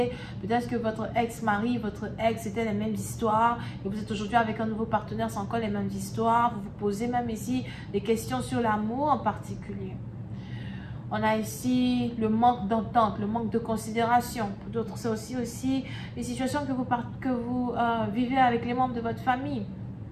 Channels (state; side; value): identical; both; correlation 1.00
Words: Peut-être que votre ex-mari, votre ex, c'était les mêmes histoires et vous êtes aujourd'hui avec un nouveau partenaire, c'est encore les mêmes histoires. Vous vous posez même ici des questions sur l'amour en particulier. On a ici le manque d'entente, le manque de considération. Pour d'autres, c'est aussi les situations que vous vivez avec les membres de votre famille.